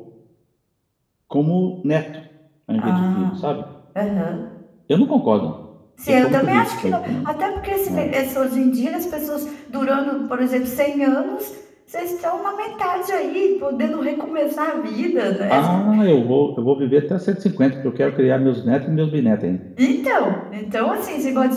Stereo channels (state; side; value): identical; both; correlation 1.00